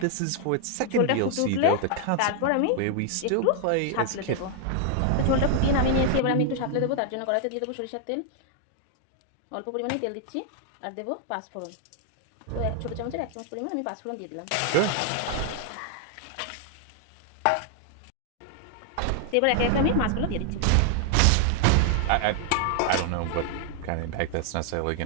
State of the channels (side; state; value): both; different; correlation 0.00